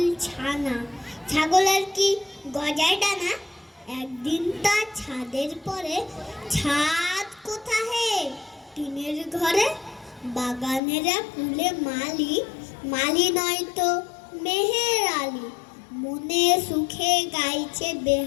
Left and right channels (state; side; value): drops out; right; at 10.8 s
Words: ছানা, ছাগলের কি গজায় ডানা। একদিন তার ছাদের পরে, ছাদ কোথা হে টিনের ঘরে, বাগানেরা কুলে মালি, মালি নয় তো মেহের আলী। মনে সুখে গাইছে